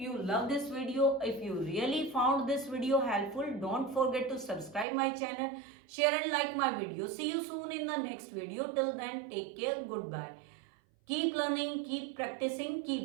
love this video. If you really found this video helpful, don't forget to subscribe my channel, share and like my video. See you soon in the next video. Till then, take care. Goodbye. Keep learning, keep practicing,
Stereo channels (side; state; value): left; drops out; at 4.9 s